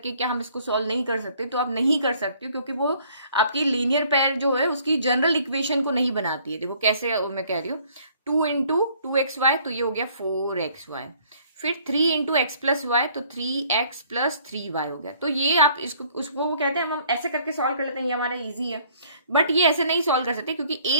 क्या हम इसको सॉल्व नहीं कर सकते। तो आप नहीं कर सकते क्योंकि वो आपकी लीनियर पेयर जो है उसकी जनरल इक्वेशन को नहीं बनाती है। देखो कैसे मैं कह रही हूँ, 2 इंटू 2xy, तो ये हो गया 4xy। फिर 3 इंटू एक्स प्लस वाई, तो 3x प्लस 3y हो गया। तो ये आप इसको उसको वो कहते हैं, हम ऐसे करके सॉल्व कर लेते हैं, ये हमारा इजी है। बट ये ऐसे नहीं सॉल्व कर सकते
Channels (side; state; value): both; inverted; correlation -0.60